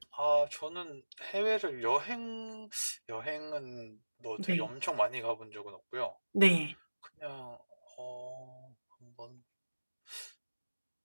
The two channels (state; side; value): inverted; both; correlation -1.00